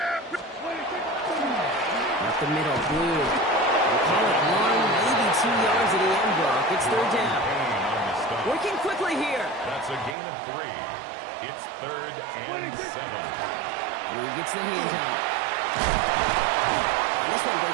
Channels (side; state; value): left; drops out; at 10.2 s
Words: Up the middle, Blue. We'll call it 1, maybe 2 yards at the end block. It's 3rd down. Working quickly here. That's a gain of 3. It's 3rd and 7. Blue gets the hands out. And this one